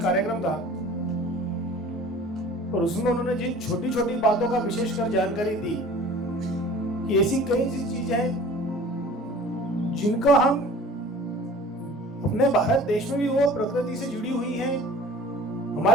कार्यक्रम था और उसमें उन्होंने जिन छोटी छोटी बातों का विशेषकर जानकारी दी कि ऐसी कई चीजें हैं जिनका हम अपने भारत देश में भी वो प्रकृति से जुड़ी हुई हैं,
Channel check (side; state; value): both; normal; correlation 0.45